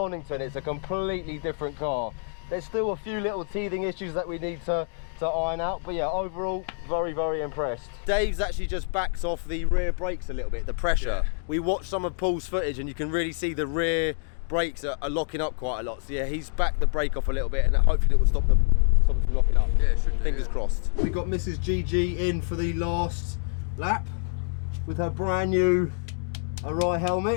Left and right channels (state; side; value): silent; right; digital silence